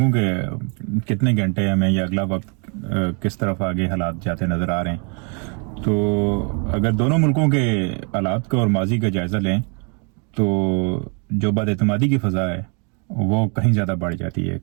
کہ کتنے گھنٹے ہمیں یہ اگلا وقت کس طرف آگے حالات جاتے نظر آ رہے ہیں۔ تو اگر دونوں ملکوں کے حالات کا اور ماضی کا جائزہ لیں تو جو بد اعتمادی کی فضا ہے وہ کہیں زیادہ بڑھ جاتی ہے،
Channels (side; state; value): left; quieter; 36.8 dB